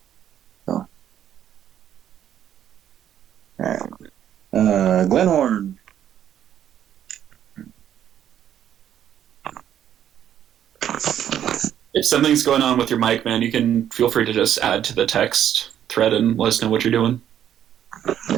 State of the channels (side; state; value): left; quieter; 10.3 dB